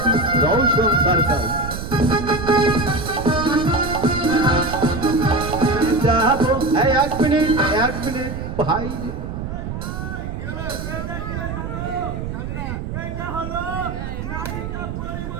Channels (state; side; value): noise; right; rumble, 6 dB below the sound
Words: রৌশন সার্কাস যাবো। এক মিনিট ভাই